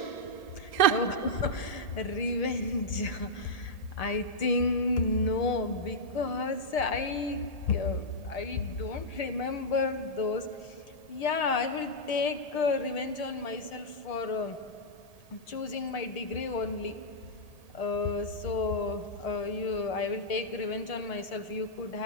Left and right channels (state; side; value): late; right; 1.8 ms